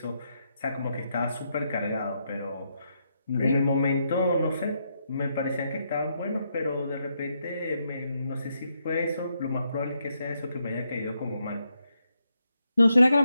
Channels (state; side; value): inverted; both; correlation -0.80